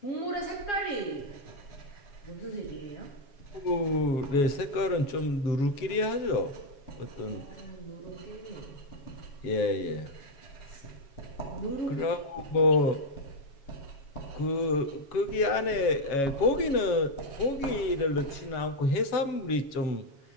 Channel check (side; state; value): right; late; 7.2 ms